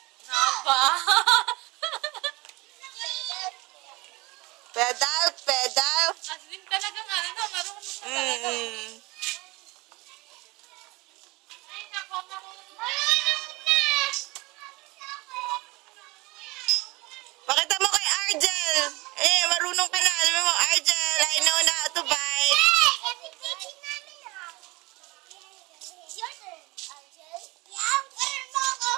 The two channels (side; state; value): left; quieter; 23.4 dB